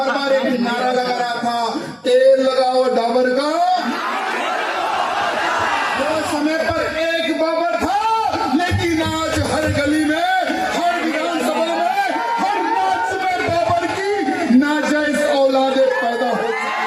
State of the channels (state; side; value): identical; both; correlation 1.00